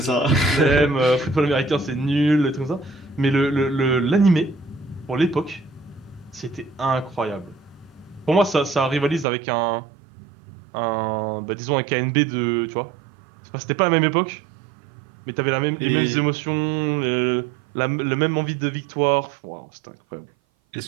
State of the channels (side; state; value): left; drops out; at 9.2 s